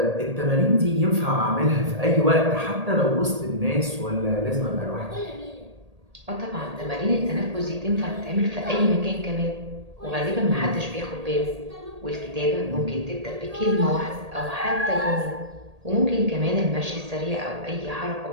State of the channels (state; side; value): late; left; 1.8 ms